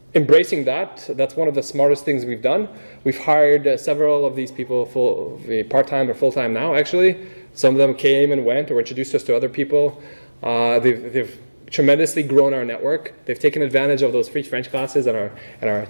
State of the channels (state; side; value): inverted; both; correlation -1.00